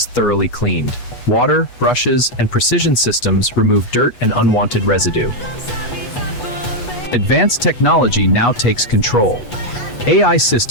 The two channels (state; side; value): late; right; 8.2 ms